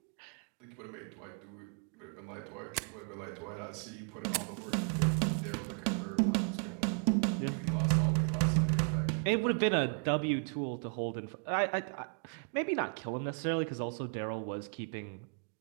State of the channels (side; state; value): left; quieter; 39.9 dB